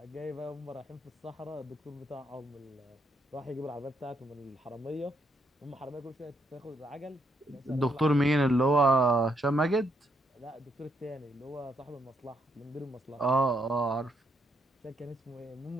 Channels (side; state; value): both; normal; correlation 0.75